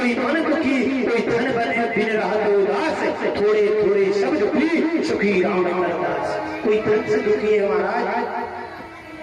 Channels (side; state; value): both; identical; correlation 1.00